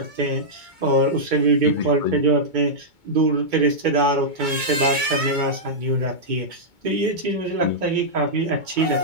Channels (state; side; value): late; left; 2.2 ms